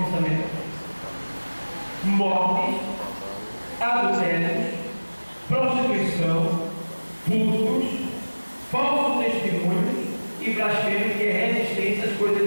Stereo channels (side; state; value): both; inverted; correlation -1.00